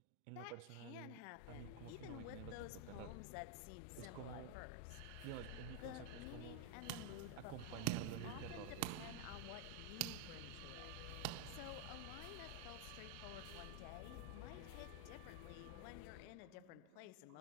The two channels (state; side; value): different; both; correlation 0.00